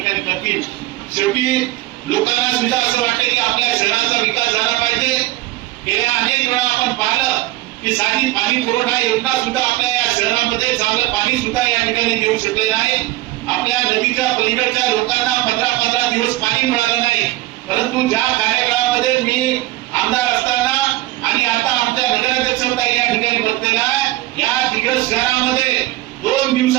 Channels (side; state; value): left; quieter; 16.7 dB